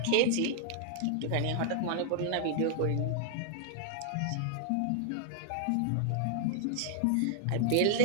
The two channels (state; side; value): different; both; correlation -0.01